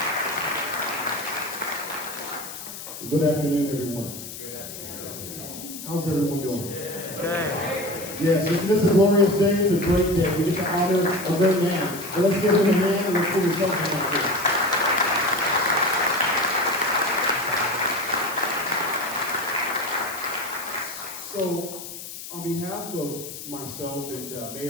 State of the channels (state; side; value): noise; left; hiss, 11 dB below the sound